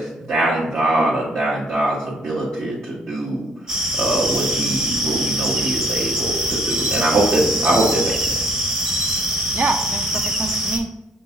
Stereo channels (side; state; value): both; normal; correlation 0.60